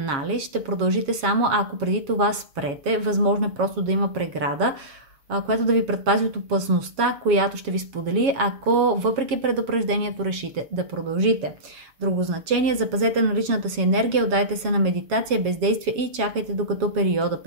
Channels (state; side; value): late; left; 7.3 ms